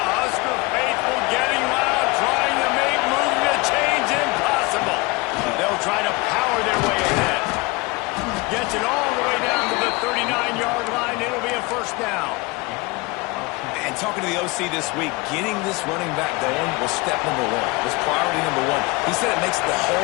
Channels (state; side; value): quieter; right; 24.8 dB